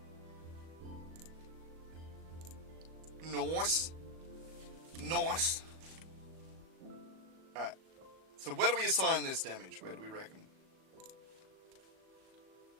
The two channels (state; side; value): late; left; 37 ms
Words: Nice. Nice. Alright. So where do we assign this damage? Where do we reckon?